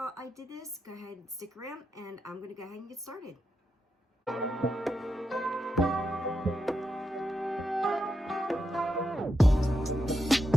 I did this, go ahead and stick around, and I'm going to go ahead and get started.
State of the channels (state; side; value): normal; both; correlation 0.86